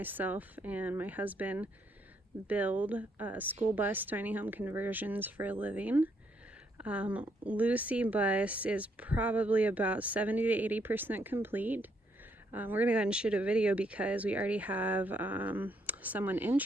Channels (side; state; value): both; normal; correlation 0.73